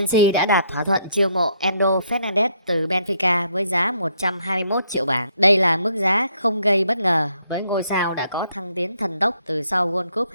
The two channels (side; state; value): both; inverted; correlation -0.71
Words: đã đạt thỏa thuận chiêu mộ Enzo Fernandez từ Benfica với giá 121 triệu bảng. Đây là mức giá không gây bất ngờ với ngôi sao đã có thăng tiến thần tốc từ sau World Cup